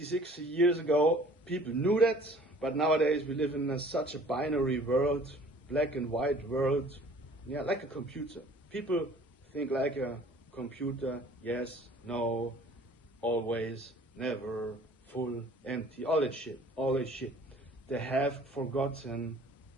60 years ago, people knew that, but nowadays we live in such a binary world, black and white world, yeah, like a computer. People think like a computer, yes, no, always, never, full, empty, all that shit. They have forgotten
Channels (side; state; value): both; normal; correlation 0.52